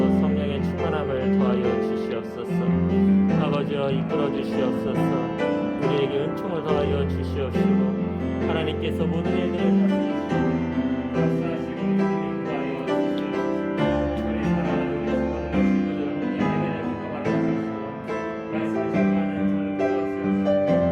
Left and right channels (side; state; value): both; identical; correlation 1.00